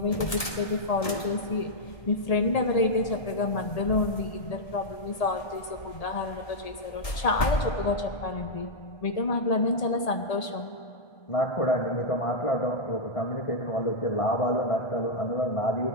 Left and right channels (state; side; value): late; right; 1.7 ms